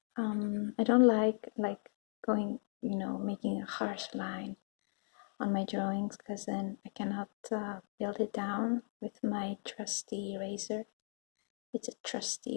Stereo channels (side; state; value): right; silent; 53 dB below the other